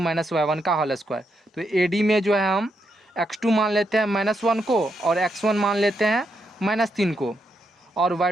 y1 का होल स्क्वायर। तो AD में जो है हम x2 मान लेते हैं -1 को, और x1 मान लेते हैं -3 को, और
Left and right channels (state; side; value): normal; both; correlation 0.81